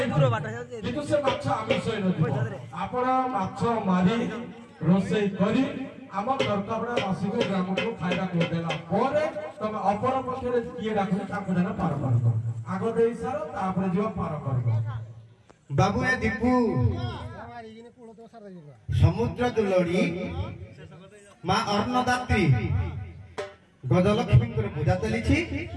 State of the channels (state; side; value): identical; both; correlation 1.00